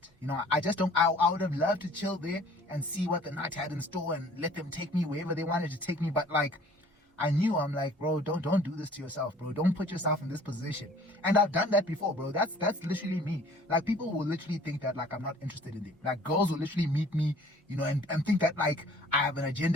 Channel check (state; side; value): normal; both; correlation 0.52